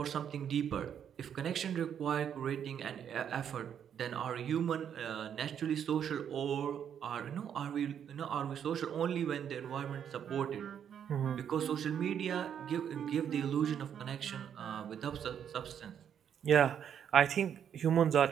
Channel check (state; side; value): quieter; left; 8.7 dB